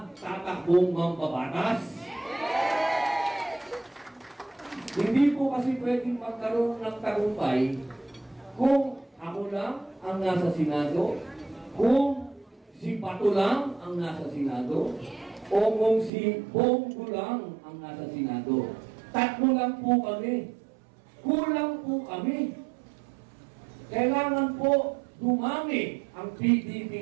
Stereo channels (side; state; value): left; drops out; at 16.1 s